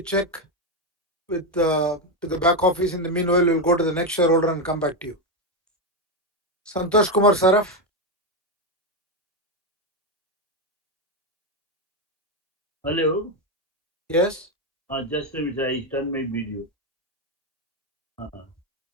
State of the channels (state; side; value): normal; both; correlation 0.09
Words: check with the back office? In the meanwhile, we'll go to the next shareholder and come back to you. Santosh Kumar Saraf. Hello. Yes. Just a minute, I turn my video.